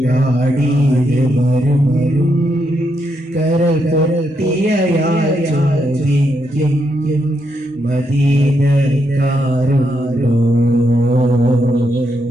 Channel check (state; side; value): normal; both; correlation 0.80